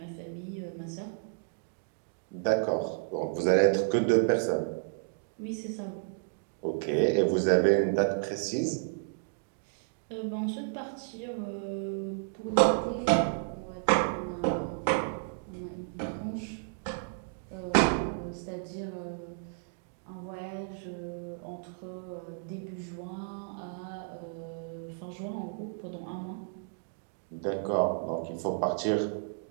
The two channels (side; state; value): left; silent; digital silence